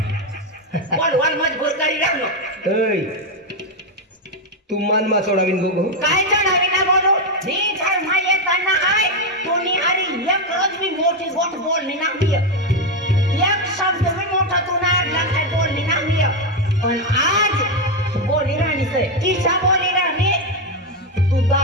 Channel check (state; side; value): normal; both; correlation 0.06